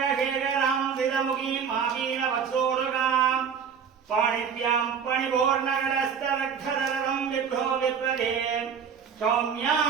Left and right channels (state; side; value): quieter; left; 7.0 dB